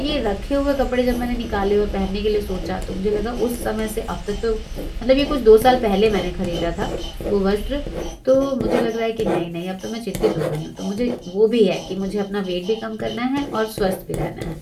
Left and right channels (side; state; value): both; identical; correlation 1.00